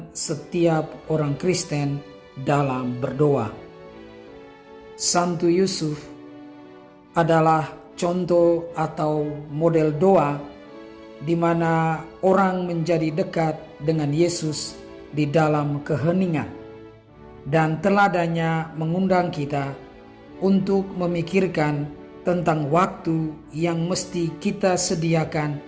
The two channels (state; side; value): identical; both; correlation 1.00